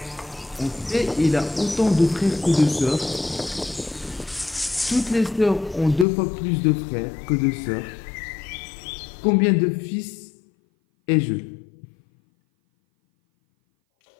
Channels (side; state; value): right; drops out; at 6.1 s